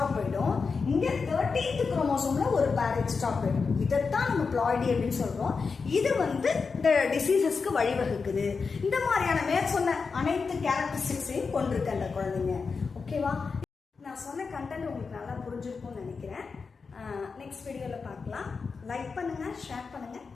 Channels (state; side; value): quieter; right; 4.9 dB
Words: போயிடும், இங்க 13th குரோமோசோம்ல ஒரு பேர் எக்ஸ்ட்ரா போயிடும். இதைத்தான் நம்ம பிளாய்டி அப்படின்னு சொல்றோம். இது வந்து இந்த டிசீசஸ்க்கு வழிவகுக்குது. இந்த மாதிரியான மேற்சொன்ன அனைத்து கேரக்டரிஸ்டிக்ஸையும் கொண்டிருக்கு அந்த குழந்தைங்க. ஓகேவா? நான் சொன்ன கண்டென்ட் உங்களுக்கு நல்லா புரிஞ்சிருக்கும்னு நினைக்கிறேன். நெக்ஸ்ட் வீடியோவில் பார்க்கலாம். லைக் பண்ணுங்க, ஷேர் பண்ணுங்க,